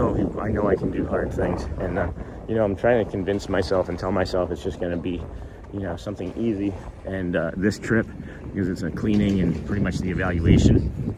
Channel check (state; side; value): identical; both; correlation 1.00